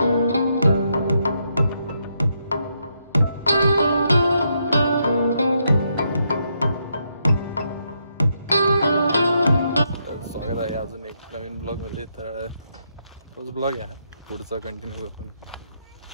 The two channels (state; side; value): inverted; both; correlation -0.79